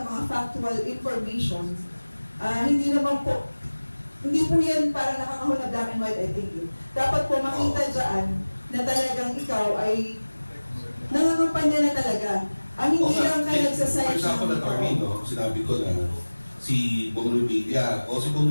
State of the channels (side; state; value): both; inverted; correlation -1.00